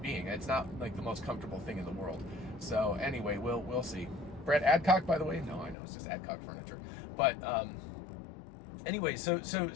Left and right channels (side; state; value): right; drops out; at 5.8 s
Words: being. It's not like the most comfortable thing in the world. So anyway, we'll see. Brett Adcock, by the way. No, I know it's just Adcock Furniture, but anyway, so